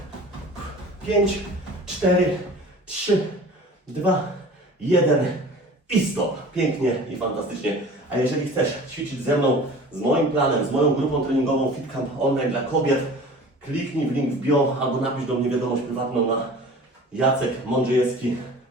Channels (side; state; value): both; normal; correlation 0.42